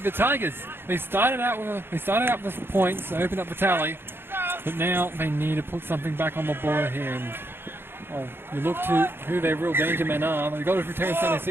Tigers. They started out with points, they opened up the tally, but now they need to put something back on the board here. And you look to who their real danger men are. They got it through Terrence Stanley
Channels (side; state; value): left; late; 0.11 ms